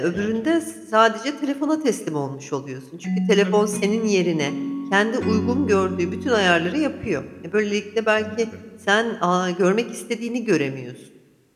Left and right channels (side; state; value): both; identical; correlation 1.00